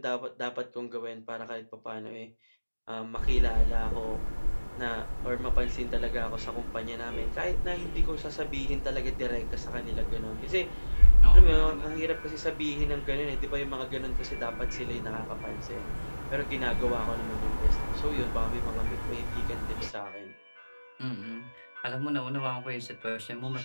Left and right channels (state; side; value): inverted; both; correlation -1.00